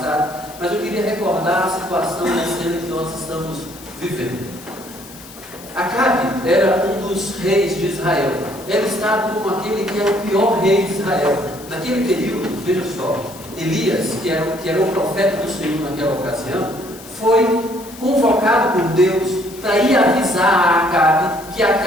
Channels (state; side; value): noise; left; hiss, 18 dB below the sound